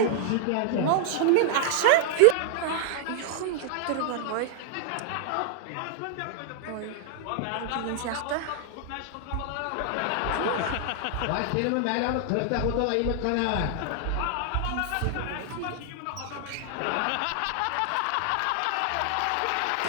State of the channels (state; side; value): different; both; correlation 0.00